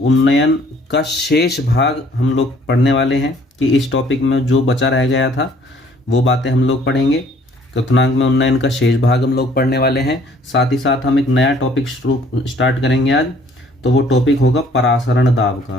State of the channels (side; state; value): both; normal; correlation 0.59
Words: का शेष भाग हम लोग पढ़ने वाले हैं कि इस टॉपिक में जो बचा रह गया था वो बातें हम लोग पढ़ेंगे। क्वथनांक में उन्नयन का शेष भाग हम लोग पढ़ने वाले हैं। साथ ही साथ हम एक नया टॉपिक स्टार्ट करेंगे आज। तो वो टॉपिक होगा परासरण दाब